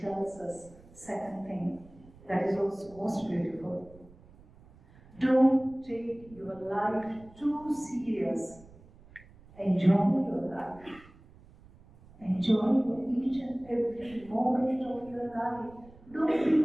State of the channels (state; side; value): noise; right; rumble, 24 dB below the sound